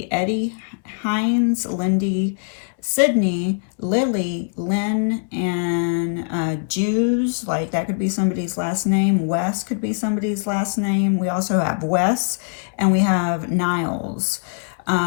Eddie, Hines, Lindy, Sydney, Lily, Lynn, and Jews, like that could be somebody's last name. Wes could be somebody's last name. We also have Wes, and we have Niles.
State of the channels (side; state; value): right; silent; 61 dB below the other